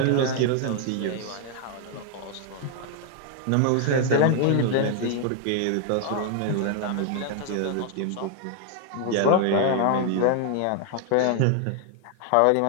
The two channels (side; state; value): both; different; correlation 0.00